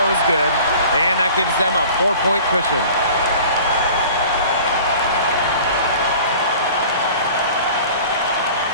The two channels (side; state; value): both; inverted; correlation -0.44